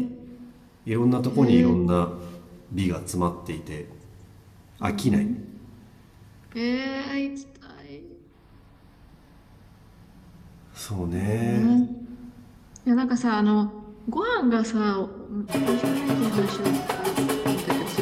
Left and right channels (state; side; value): identical; both; correlation 1.00